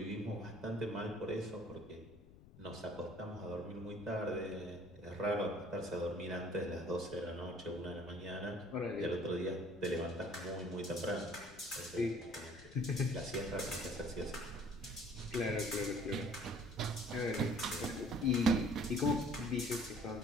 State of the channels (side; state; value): left; noise; rumble, 20 dB below the sound